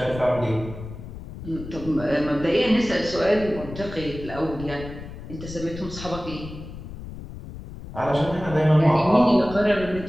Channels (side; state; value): left; noise; rumble, 12 dB below the sound